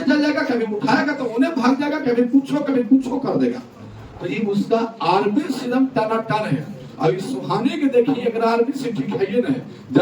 जाएगा, कभी उठाएगा तो उन्हें भाग जाएगा, कभी कुछ कर देगा। तो ये उसका आरबीसी एकदम टनाटन है। अब इस सुहानी के देखिए अगर आरबीसी ठीक है ना,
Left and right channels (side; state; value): both; identical; correlation 1.00